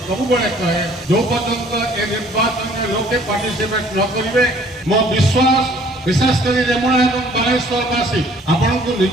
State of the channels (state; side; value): normal; both; correlation 0.57